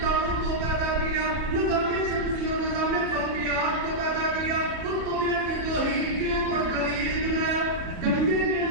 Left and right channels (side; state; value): left; late; 34 ms